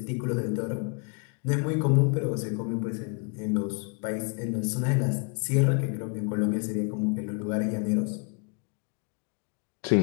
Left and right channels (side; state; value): right; quieter; 35.4 dB